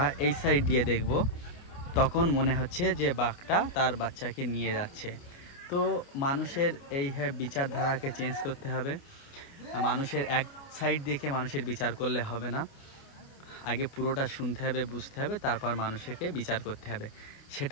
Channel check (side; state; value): right; late; 29 ms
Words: এই সাইড দিয়ে দেখব তখন মনে হচ্ছে যে বাঘটা তার বাচ্চাকে নিয়ে যাচ্ছে। তো মানুষের এই বিচারধারাকে চেঞ্জ করতে হবে। মানুষের এক সাইড দেখে মানুষের বিচার করলে হবে না, আগে পুরোটা শুনতে হবে, বুঝতে হবে, তারপর মানুষকে বিচার করতে হবে।